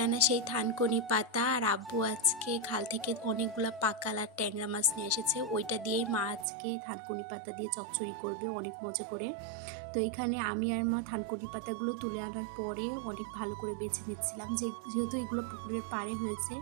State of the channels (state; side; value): drops out; left; at 6.5 s